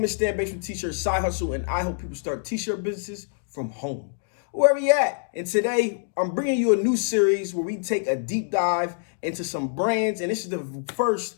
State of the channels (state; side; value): silent; right; digital silence